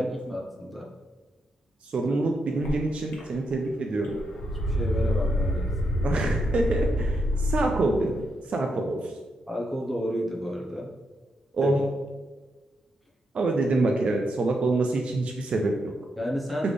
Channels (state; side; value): normal; both; correlation 0.82